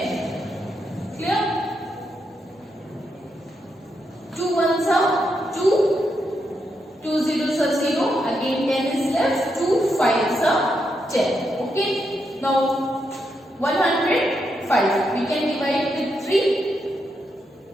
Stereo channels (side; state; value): both; normal; correlation 0.82